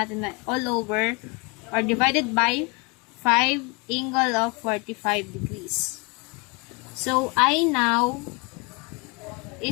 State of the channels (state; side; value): quieter; right; 29.1 dB